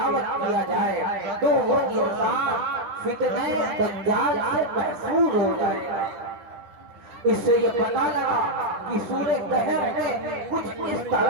کیا جائے تو وہ انسان فتنہ دجال سے محفوظ ہو جائے گا۔ اس سے یہ پتہ لگا کہ سورہ کہف میں کچھ اس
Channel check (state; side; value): late; left; 9.9 ms